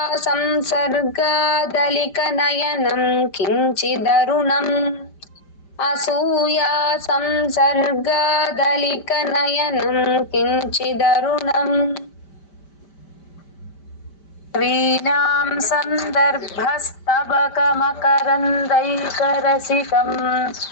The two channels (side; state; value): right; late; 5.1 ms